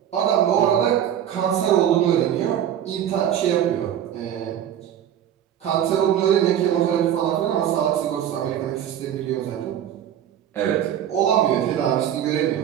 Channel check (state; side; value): quieter; left; 10.3 dB